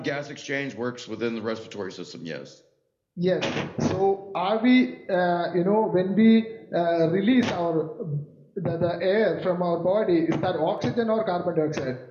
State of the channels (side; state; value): both; identical; correlation 1.00